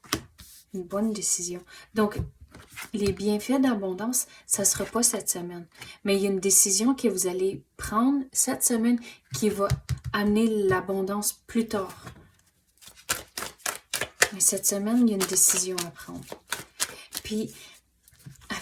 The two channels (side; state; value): both; identical; correlation 1.00